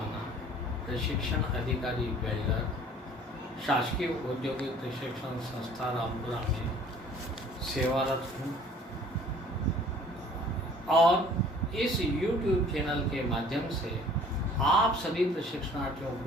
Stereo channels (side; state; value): both; normal; correlation 0.52